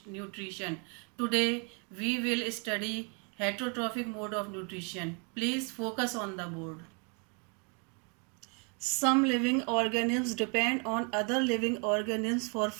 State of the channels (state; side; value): quieter; left; 36.1 dB